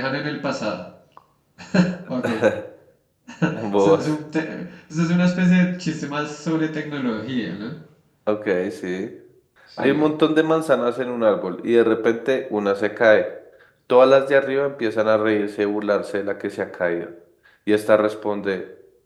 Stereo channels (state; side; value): identical; both; correlation 1.00